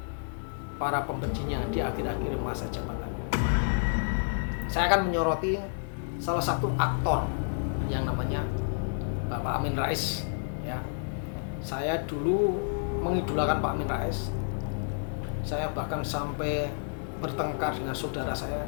para pembencinya di akhir-akhir masa jabatannya. Saya akan menyoroti salah satu aktor yang namanya Bapak Amin Rais. Ya, saya dulu mengidolakan Pak Amin Rais. Saya bahkan sampai bertengkar dengan saudara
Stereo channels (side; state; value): right; silent; digital silence